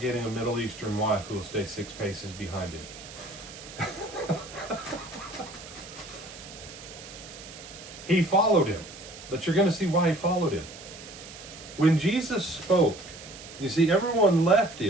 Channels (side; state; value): right; noise; hiss, 15 dB below the sound